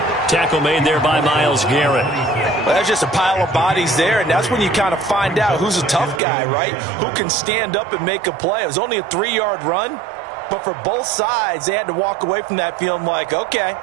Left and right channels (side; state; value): left; drops out; at 6.2 s